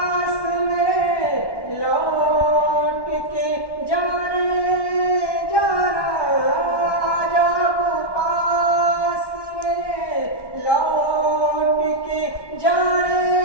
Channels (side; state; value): right; late; 1.1 ms